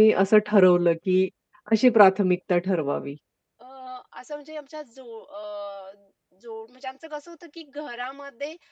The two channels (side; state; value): both; identical; correlation 1.00